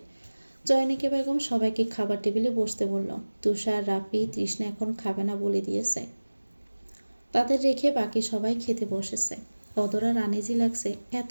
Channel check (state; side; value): inverted; both; correlation -1.00